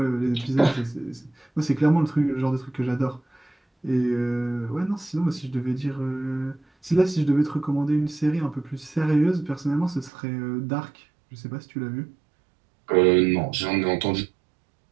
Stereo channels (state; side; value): drops out; left; at 10.1 s